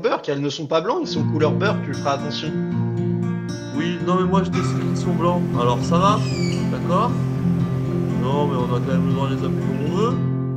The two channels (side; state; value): both; identical; correlation 1.00